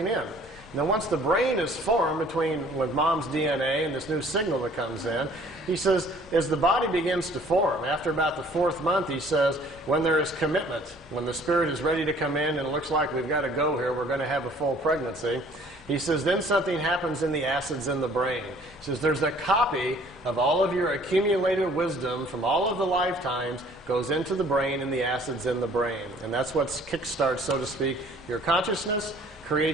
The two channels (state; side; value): normal; both; correlation 0.55